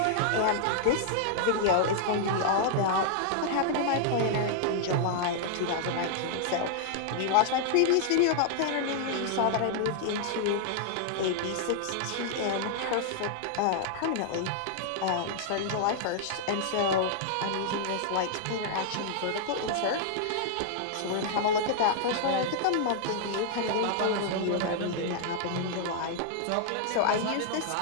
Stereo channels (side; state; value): both; different; correlation -0.01